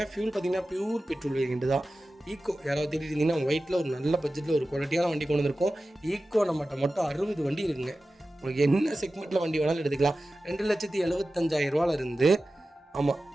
ஃபியூல் பார்த்தீங்கன்னா பியூர் பெட்ரோல் வேரியன்ட் தான். ஈக்கோ யாராவது தேடிட்டு இருந்தீங்கன்னா ஒயிட்டில் ஒரு நல்ல பட்ஜெட்டில் ஒரு குவாலிட்டியான வண்டி கொண்டு வந்திருக்கோம். ஈக்கோ நம்மகிட்ட மட்டும் 60 வண்டி இருக்குங்க. உங்களுக்கு என்ன செக்மெண்ட்டில் வண்டி வேணாலும் எடுத்துக்கலாம். 2,75,000 இருந்து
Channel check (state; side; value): normal; both; correlation 0.95